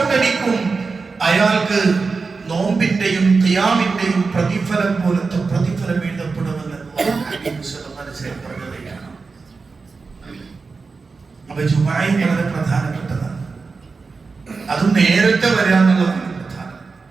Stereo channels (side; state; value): left; quieter; 4.4 dB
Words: അയാൾക്ക് നോമ്പിന്റെയും ഖിയാമിന്റെയും പ്രതിഫലം പോലത്തെ പ്രതിഫലം എഴുതപ്പെടുമെന്ന് പറഞ്ഞതാണ്. അപ്പൊ ജുമുഅ വളരെ പ്രധാനപ്പെട്ടതാണ്. അത് നേരത്തെ വരിക എന്നുള്ളതാണ് പ്രധാനം.